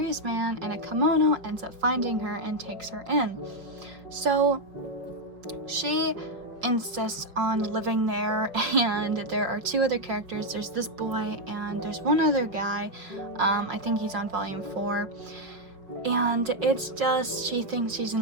man in a kimono ends up finding her and takes her in. So she insists on living there, and there are 2 other characters. There's this boy, and there's one other guy. I think he's on volume 4. And it's just, she thinks she's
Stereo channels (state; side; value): late; left; 5.2 ms